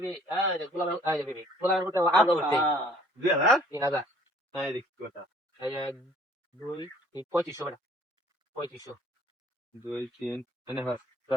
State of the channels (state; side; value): normal; both; correlation 0.56